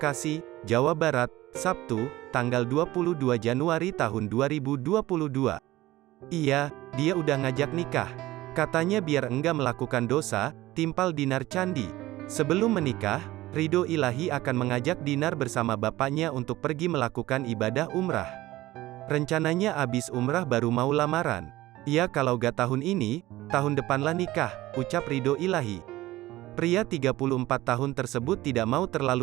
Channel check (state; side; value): quieter; left; 17.1 dB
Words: Jawa Barat, Sabtu, tanggal 22 Januari tahun 2022. Iya, dia udah ngajak nikah. Katanya biar enggak melakukan dosa, timpal Dinar Candi. Sebelum menikah, Ridho Ilahi akan mengajak Dinar bersama bapaknya untuk pergi melakukan ibadah umrah. Rencananya abis umrah baru mau lamaran. Ya kalau gak tahun ini, tahun depanlah nikah, ucap Ridho Ilahi. Pria 34 tahun tersebut tidak mau